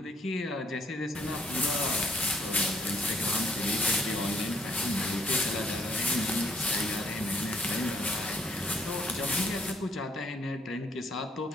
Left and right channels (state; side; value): normal; both; correlation 0.67